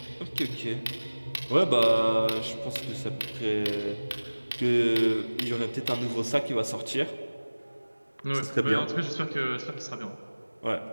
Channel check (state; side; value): inverted; both; correlation -1.00